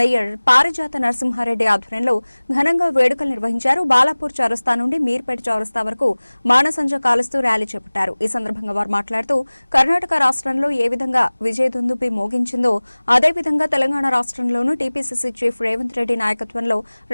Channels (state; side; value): inverted; both; correlation -1.00